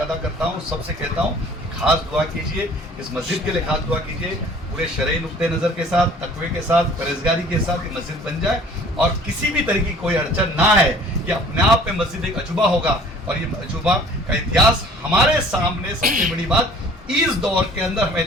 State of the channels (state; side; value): normal; both; correlation 0.51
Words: अदा करता हूँ। सबसे कहता हूँ कि खास दुआ कीजिए, इस मस्जिद के लिए खास दुआ कीजिए, पूरे शरई नुक्ते नज़र के साथ, तकवे के साथ, परहेजगारी के साथ ये मस्जिद बन जाए और किसी भी तरह की कोई अड़चन ना है। ये अपने आप में मस्जिद एक अजूबा होगा और ये अजूबा का इतिहास हमारे सामने। सबसे बड़ी बात, इस दौर के अंदर हम